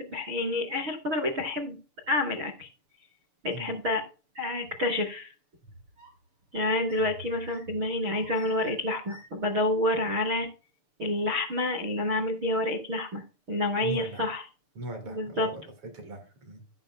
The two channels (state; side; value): late; left; 6.8 ms